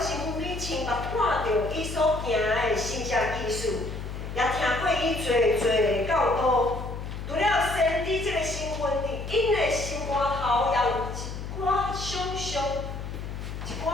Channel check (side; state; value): left; noise; hum, 7 dB below the sound